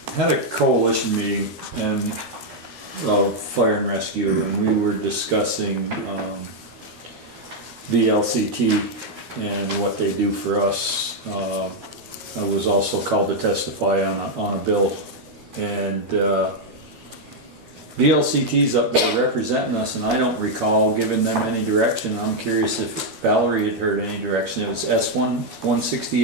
Had a coalition meeting and of fire and rescue, and we were discussing VLCT and what they do for us. I was also called to testify on a bill, and VLCT's up there representing us, and I don't recall giving them any direction. I'm curious if Valerie had heard any direction. It was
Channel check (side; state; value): left; late; 13 ms